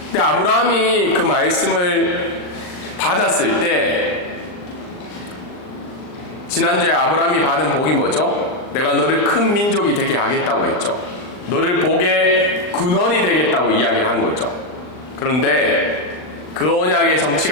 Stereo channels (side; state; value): right; late; 39 ms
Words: 근데 아브라함이 그 말씀을 받았을 때 지난주에 아브라함이 받은 복이 뭐죠? 내가 너를 큰 민족이 되게 하겠다고 했죠. 너를 복의 근원이 되겠다고 이야기를 한 거죠. 그런데 그 언약의